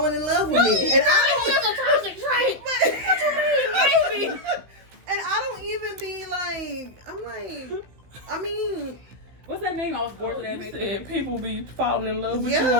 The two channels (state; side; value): late; left; 16 ms